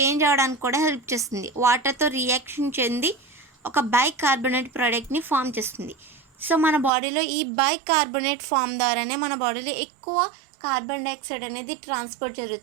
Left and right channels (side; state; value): left; drops out; at 6.9 s